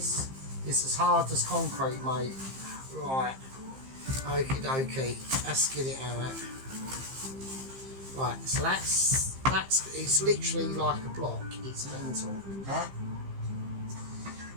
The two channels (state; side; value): late; left; 15 ms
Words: as hard as concrete, mate. Right. Okie dokie. Let's get it out. Right, so it's literally like a block. It's mental. Right?